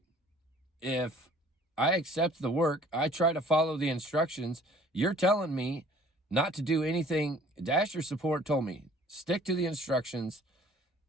if I accept the work, I try to follow the instructions? You're telling me not to do anything. Dasher support told me, stick to the instructions.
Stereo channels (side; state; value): both; normal; correlation 0.53